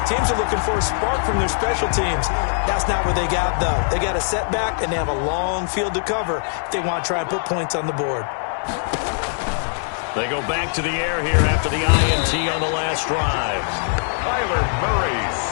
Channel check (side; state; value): right; silent; digital silence